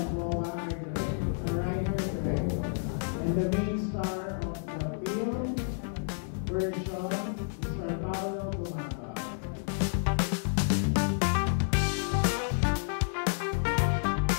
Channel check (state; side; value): silent; right; digital silence